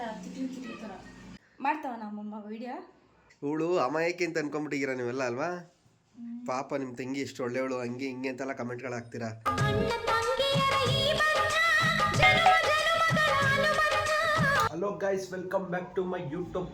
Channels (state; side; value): identical; both; correlation 1.00